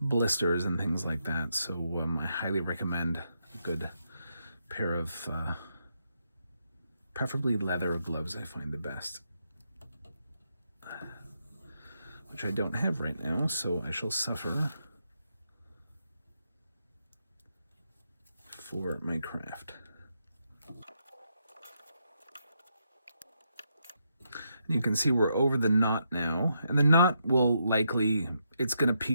blisters and things like that. So I highly recommend a good pair of preferably leather gloves. I find the best, which I don't have right now, so I shall suffer for my craft. You can see we're over the knot now, and the knot will likely, it's going to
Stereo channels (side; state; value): both; inverted; correlation -0.80